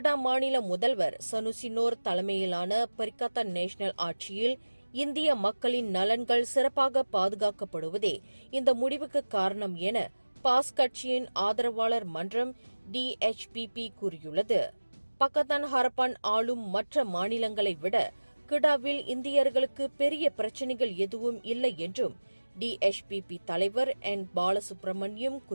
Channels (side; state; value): both; inverted; correlation -1.00